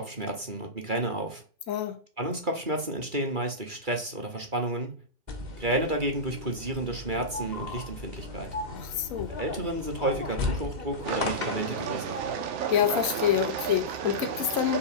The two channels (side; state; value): left; late; 2.3 ms